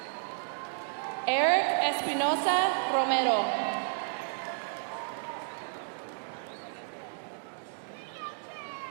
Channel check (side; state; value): left; silent; digital silence